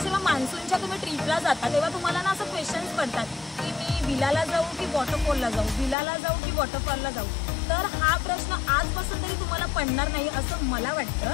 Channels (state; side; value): drops out; right; at 6.0 s